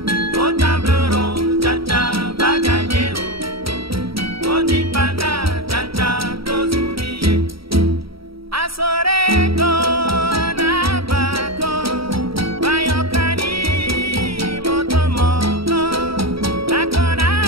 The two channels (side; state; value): left; late; 0.75 ms